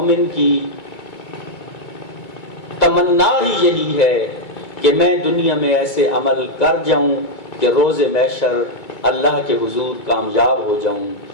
کی تمنا ہی یہی ہے کہ میں دنیا میں ایسے عمل کر جاؤں کہ روز محشر اللہ کے حضور کامیاب ہو جاؤں۔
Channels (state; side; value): late; right; 2.2 ms